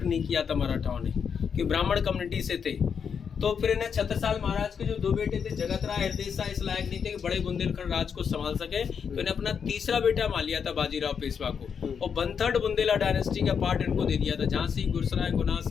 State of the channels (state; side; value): quieter; right; 6.8 dB